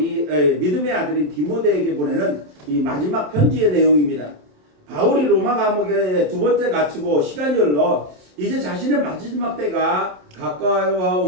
믿음의 아들인 디모데에게 보내는 이 마지막 편지의 내용입니다. 바울이 로마 감옥에 두 번째 갇히고 시간이 흘러 이제 자신의 마지막 때가 가까워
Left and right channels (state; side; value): late; left; 27 ms